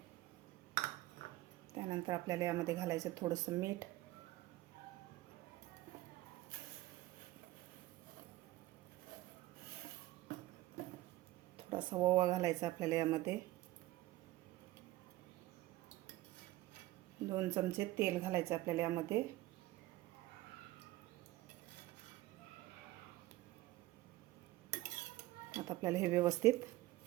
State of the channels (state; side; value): quieter; left; 17.6 dB